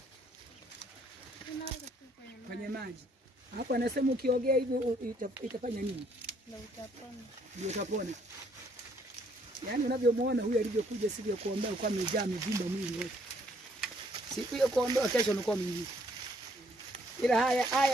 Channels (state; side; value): normal; both; correlation 0.66